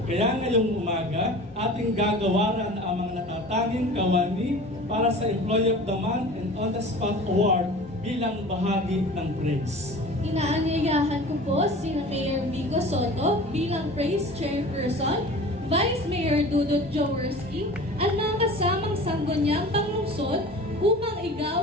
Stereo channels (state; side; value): normal; both; correlation 0.40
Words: Kaya ngayong umaga, ating gagawaran ang mga natatanging kawani para sa Employee of the Month and On the Spot Award bilang bahagi ng PRAISE. Inaanyayahan ko po si Mayor Vico Soto bilang PRAISE Chairperson, Vice Mayor Dudut Jaworski at mga kasamang sangguniang panglungsod upang